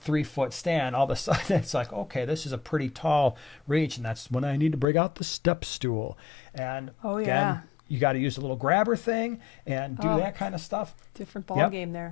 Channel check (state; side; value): drops out; right; at 4.9 s